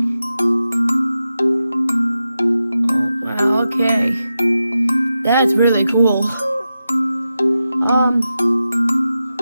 okay, that's really cool.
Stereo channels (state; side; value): inverted; both; correlation -0.90